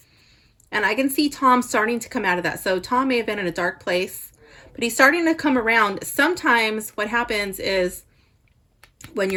And I can see Tom starting to come out of that. So Tom may have been in a dark place, but he's starting to come around. Sometimes what happens is when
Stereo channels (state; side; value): identical; both; correlation 1.00